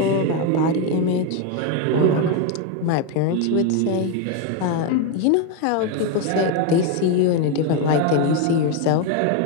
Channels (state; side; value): different; both; correlation 0.02